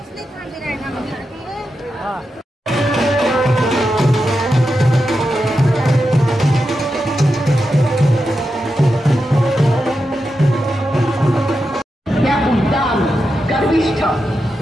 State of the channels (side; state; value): both; normal; correlation 0.88